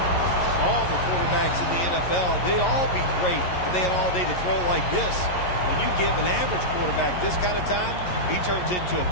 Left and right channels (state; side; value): late; right; 11 ms